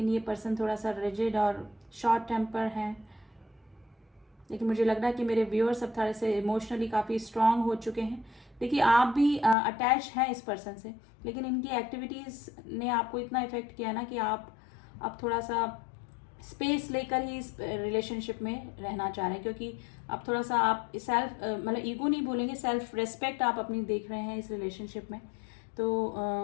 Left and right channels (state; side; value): drops out; right; at 9.6 s